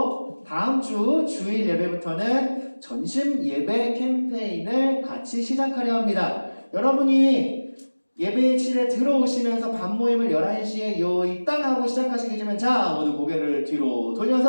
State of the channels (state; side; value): inverted; both; correlation -1.00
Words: 다음 주 주일 예배부터는 전심 예배 캠페인을 같이 시작하려 합니다. 여러분이 예배실에 들어오시면서 반모임을 11시에 이땅 하고 시작하시기 전에 자 모두 고개를 뒤로